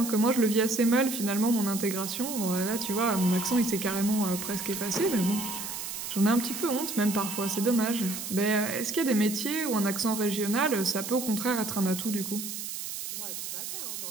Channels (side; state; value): right; noise; hiss, 6 dB below the sound